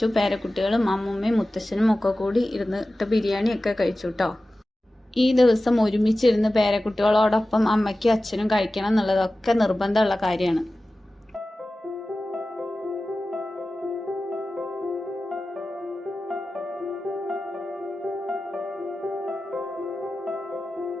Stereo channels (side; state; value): both; normal; correlation 0.95